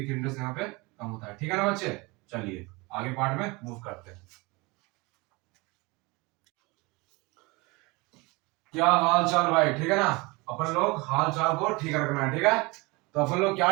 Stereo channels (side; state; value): left; quieter; 25.4 dB